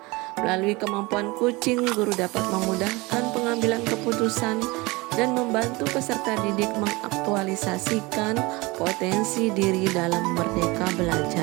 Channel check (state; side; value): quieter; left; 23.6 dB